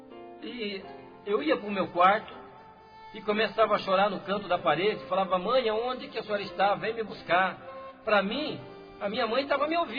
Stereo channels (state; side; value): identical; both; correlation 1.00